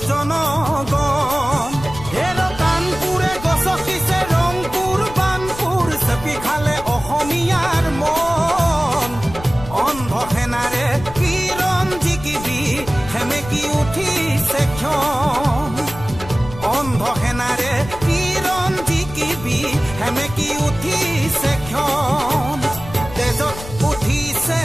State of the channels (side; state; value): left; noise; rumble, 13 dB below the sound